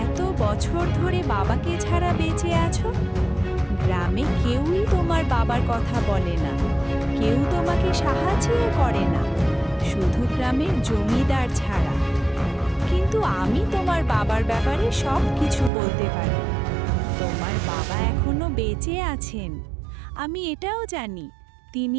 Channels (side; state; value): left; drops out; at 15.7 s